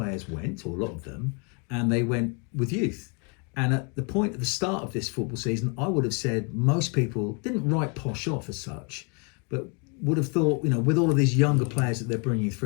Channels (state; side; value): quieter; right; 35.8 dB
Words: went, or a lot of them, and they went with youth. And at the point at the start of this football season, I would have said most people didn't write Posh off as such, but would have thought, with all of these younger players that they're bringing